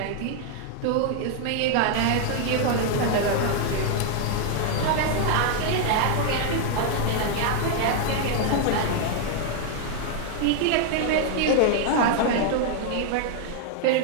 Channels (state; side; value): different; both; correlation 0.00